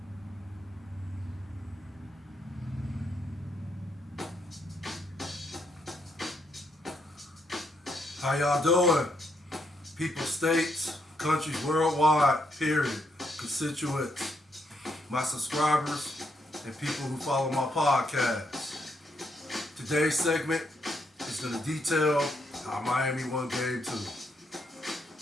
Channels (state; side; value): normal; both; correlation 0.76